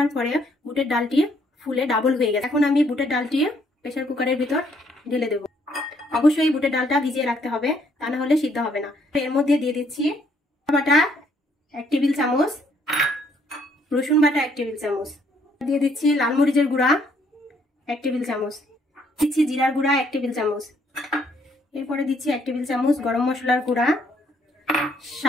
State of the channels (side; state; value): both; normal; correlation 0.68